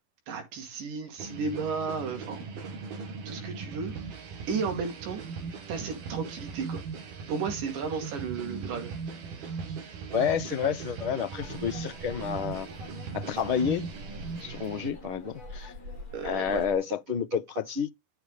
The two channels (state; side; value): late; left; 10 ms